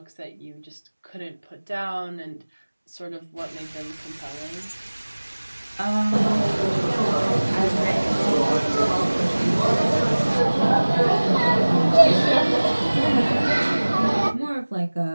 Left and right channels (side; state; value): both; inverted; correlation -1.00